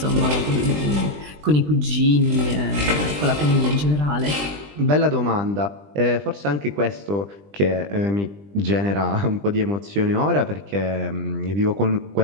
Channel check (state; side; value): late; left; 20 ms